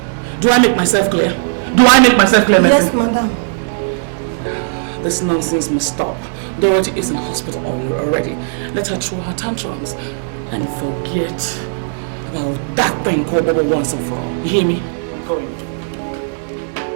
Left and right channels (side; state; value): left; silent; digital silence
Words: Do I make myself clear? Do I make myself clear, Mercy? Yes, madam. This nonsense must stop. Dorothy is in hospital already. Let her throw her tantrums and forget about that thing called Bobo once and for all. You hear me? Go in.